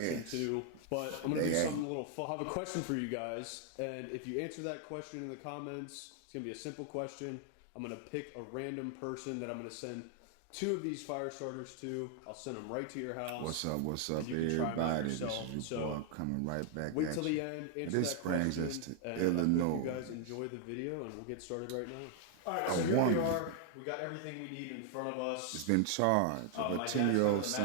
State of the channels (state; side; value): different; both; correlation 0.00